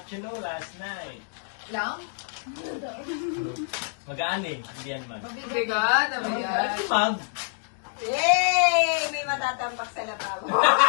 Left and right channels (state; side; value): silent; right; digital silence